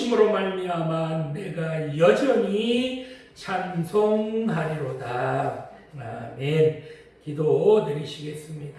말미암아 내가 여전히 찬송하리로다. 아멘. 기도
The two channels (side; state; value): both; identical; correlation 1.00